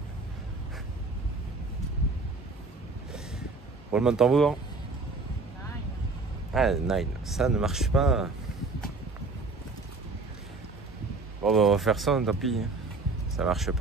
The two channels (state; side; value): quieter; left; 3.8 dB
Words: Roulement de tambour. Ah, 9, ça ne marche pas. Bon, bah, on va faire ça, tant pis. Ça marche